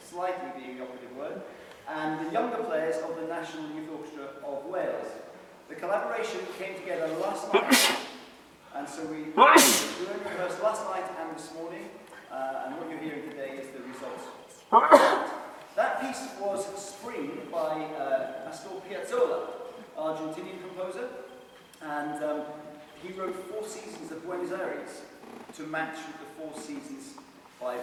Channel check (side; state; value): both; identical; correlation 1.00